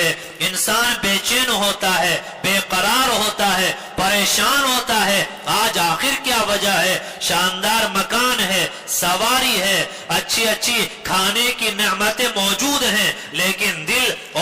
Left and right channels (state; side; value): identical; both; correlation 1.00